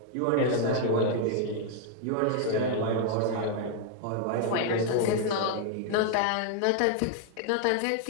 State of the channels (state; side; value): different; both; correlation 0.00